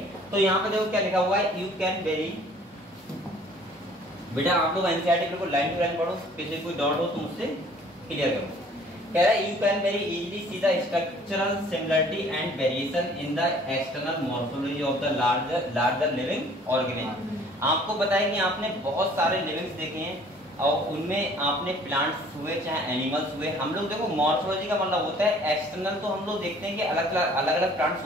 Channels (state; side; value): normal; both; correlation 0.54